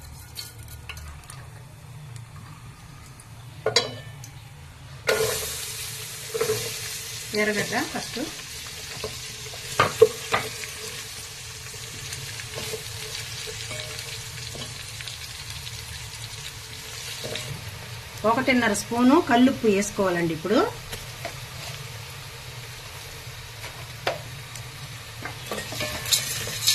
ఎర్రగడ్డ ఫస్ట్, ఒకటిన్నర స్పూను కల్లుప్పు వేసుకోవాలండి. ఇప్పుడు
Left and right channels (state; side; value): identical; both; correlation 1.00